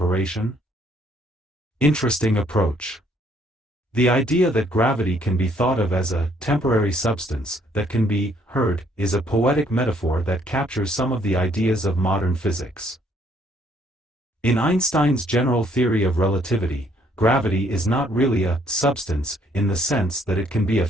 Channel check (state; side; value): normal; both; correlation 0.66